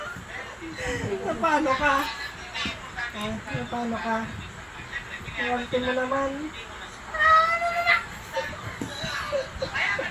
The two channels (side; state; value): both; identical; correlation 1.00